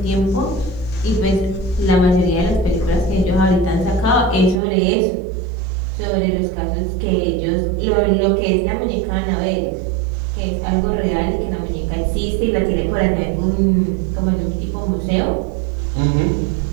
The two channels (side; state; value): left; drops out; at 4.6 s